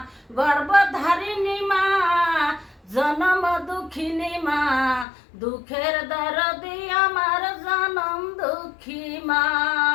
গর্ভধারিণী মা, জনম দুঃখিনী মা, দুঃখের দরদি আমার জনম দুঃখী মা।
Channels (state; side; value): drops out; right; at 5.1 s